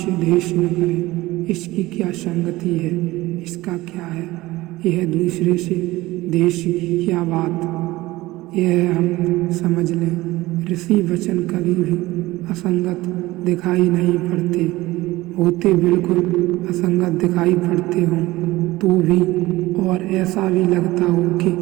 द्वेष न करें। इसकी क्या संगति है? इसका क्या है? यह दूसरे से द्वेष की क्या बात? यह हम समझ लें। ऋषि वचन कभी भी असंगत दिखाई नहीं पड़ते, होते बिल्कुल असंगत दिखाई पड़ते हों तो भी, और ऐसा भी लगता हो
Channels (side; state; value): left; quieter; 18.7 dB